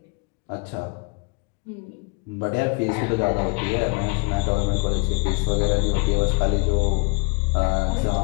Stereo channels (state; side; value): quieter; right; 32.2 dB